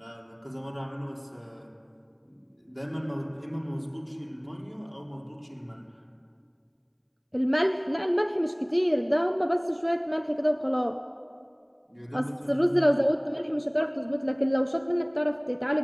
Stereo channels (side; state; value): both; identical; correlation 1.00